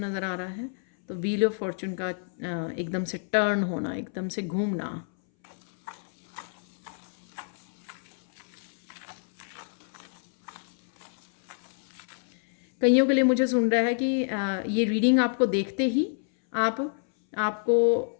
नज़र आ रहा है। तो व्हील ऑफ फॉर्चून का एकदम से टर्न होना, एकदम से घूमना। कईयों के लिए मुझे सुन रहा है कि ये रीडिंग आपको देखते ही आपको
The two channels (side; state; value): right; silent; 59 dB below the other